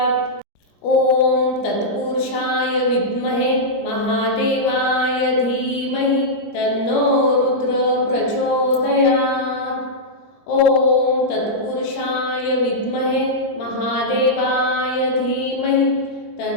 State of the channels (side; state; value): right; late; 21 ms